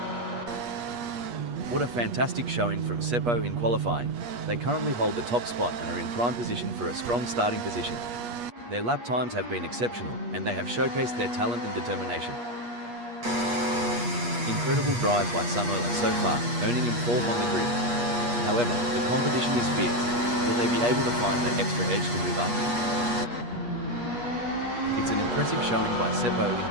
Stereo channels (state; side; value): late; left; 8.4 ms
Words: What a fantastic showing from Seppo in qualifying. They currently hold the top spot and are in prime position for a strong starting position. Their lap times have been exceptional, and they have showcased their talent and determination. Incredible drive by Sunola so far, earning him 4th on the grid. However, the competition is fierce. Will they be able to find that extra edge to move up? It's an impressive showing by Seppo in